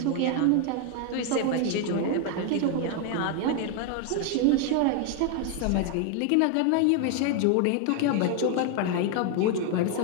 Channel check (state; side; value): different; both; correlation 0.01